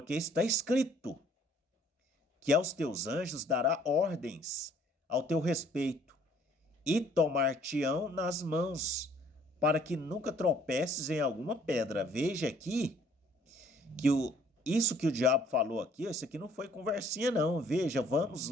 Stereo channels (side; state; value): both; normal; correlation 0.60